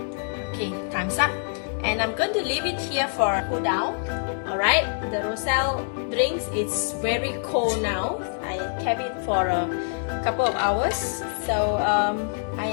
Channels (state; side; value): silent; right; digital silence